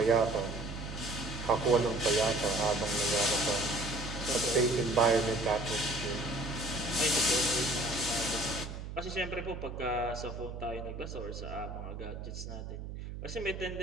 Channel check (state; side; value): noise; right; hum, 8 dB below the sound